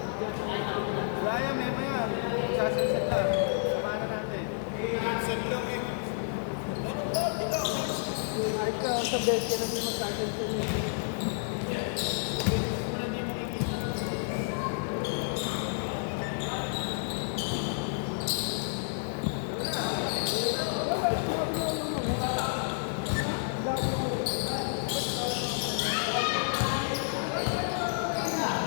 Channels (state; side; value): silent; right; digital silence